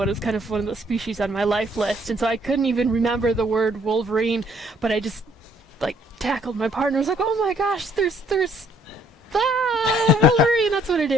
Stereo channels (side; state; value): both; normal; correlation 0.64